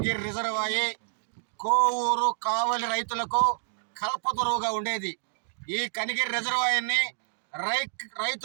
రిజర్వాయర్ కోవూరు కావలి రైతులకు కల్పతరువుగా ఉండేది. ఈ కనిగిరి రిజర్వాయర్ని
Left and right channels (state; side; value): silent; left; digital silence